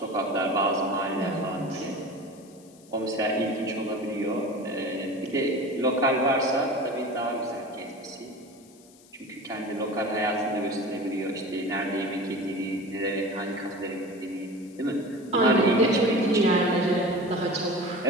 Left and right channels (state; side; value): noise; left; hiss, 26 dB below the sound